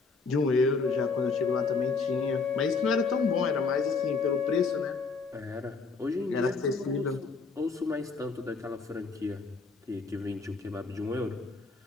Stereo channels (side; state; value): right; quieter; 4.4 dB